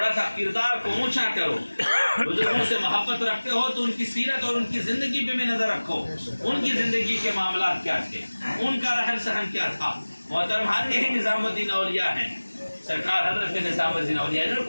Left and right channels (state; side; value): inverted; both; correlation -1.00